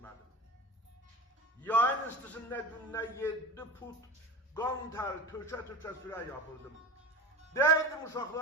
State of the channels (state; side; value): normal; both; correlation 0.31